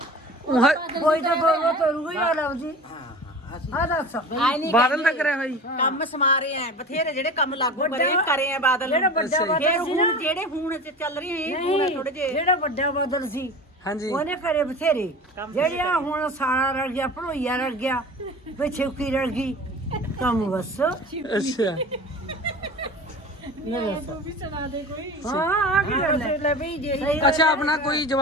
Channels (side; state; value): both; normal; correlation 0.36